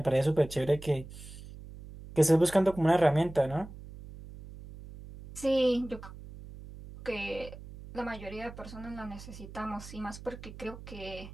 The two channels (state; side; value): noise; right; hum, 15 dB below the sound